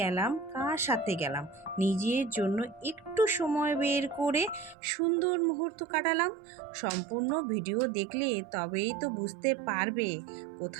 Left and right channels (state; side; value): drops out; left; at 4.8 s